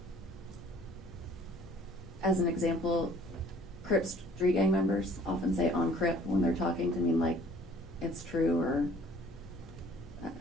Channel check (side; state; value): both; normal; correlation 0.54